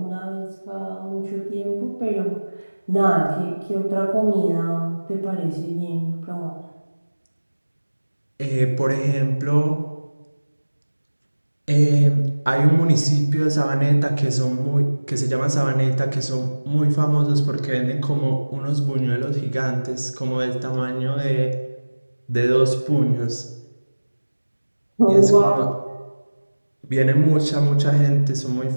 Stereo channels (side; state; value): both; inverted; correlation -1.00